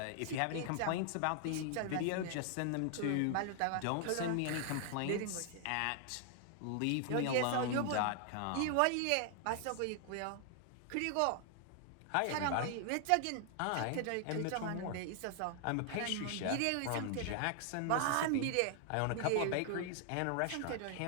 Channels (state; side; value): different; both; correlation 0.00